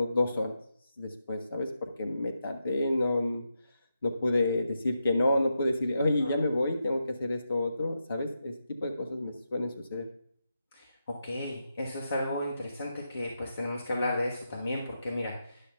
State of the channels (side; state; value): both; inverted; correlation -0.86